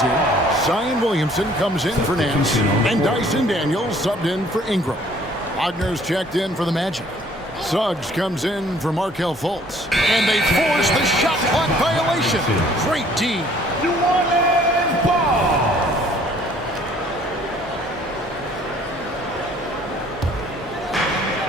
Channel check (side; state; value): both; normal; correlation 0.58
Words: here. Zion Williamson comes in for Nance. And Dyson Daniels subbed in for Ingram. Wagner's checked in for the Magic. Suggs comes in for Markelle Fultz. And they force the shot clock violation. Great D. New Orleans ball.